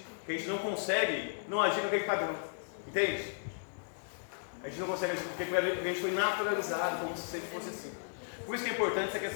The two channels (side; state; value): right; silent; digital silence